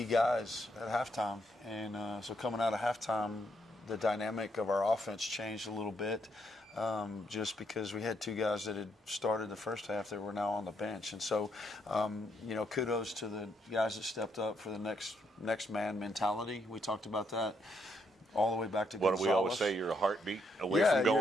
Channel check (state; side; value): normal; both; correlation 0.75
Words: guys at halftime. And so coming out of halftime, the dynamic of our offense changed a little bit. Just because we had 2 guys that had started the first half that were now on the bench. And so, you know, kudos to the guys that stepped up for the next man mentality. We talked about that all the way back to What do we always say? You're a heartbeat away from